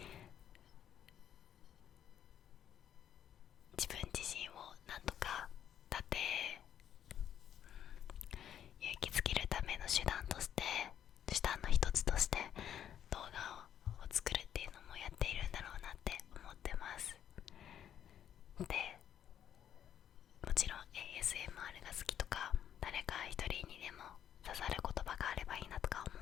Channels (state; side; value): quieter; right; 9.9 dB